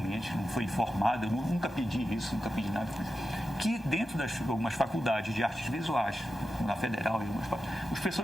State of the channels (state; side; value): normal; both; correlation 0.91